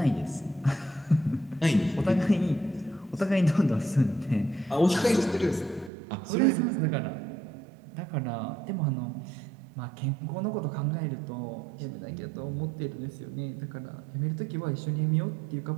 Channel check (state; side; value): drops out; left; at 5.9 s